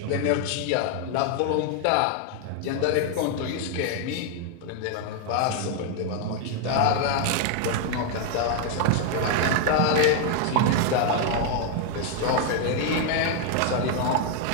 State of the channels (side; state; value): both; different; correlation 0.00